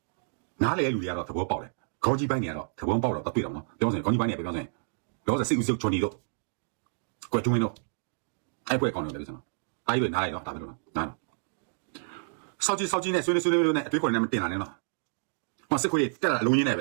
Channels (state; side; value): silent; left; digital silence